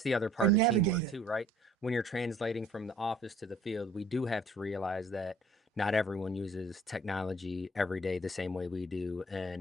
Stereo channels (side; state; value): both; normal; correlation 0.55